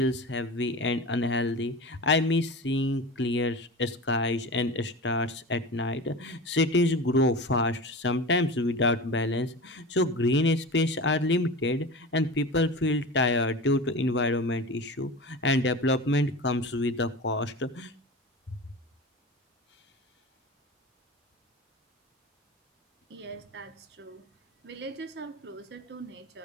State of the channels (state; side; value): normal; both; correlation 0.31